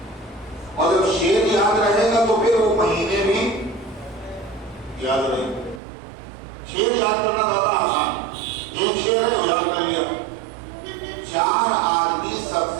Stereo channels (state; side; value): drops out; left; at 5.8 s